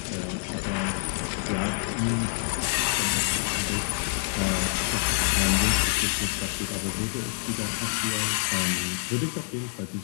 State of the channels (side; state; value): right; silent; 60 dB below the other